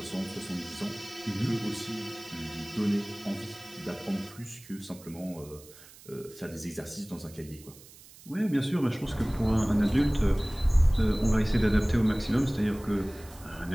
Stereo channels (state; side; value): noise; right; hiss, 21 dB below the sound